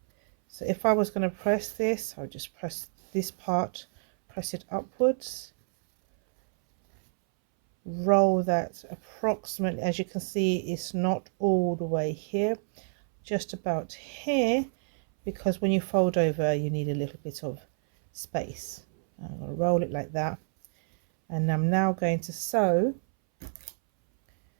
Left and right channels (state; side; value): silent; left; 59 dB below the other